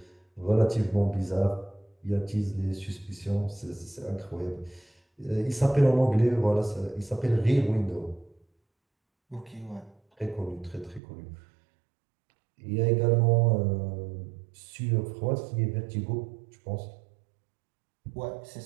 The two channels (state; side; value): drops out; left; at 11.0 s